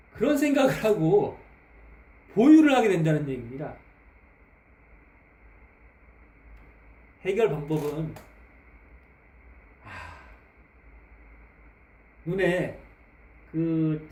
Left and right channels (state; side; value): identical; both; correlation 1.00